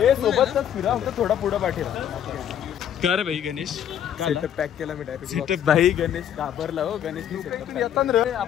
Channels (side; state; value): right; quieter; 9.9 dB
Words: सोबतच फिरा. फक्त थोडा पुढं पाठीला. कर भाई गणेश सेटअप पॅक केला मी डायरेक्ट. सेटअप भाई गणेश घाबरला हो. गणेश येतात रे.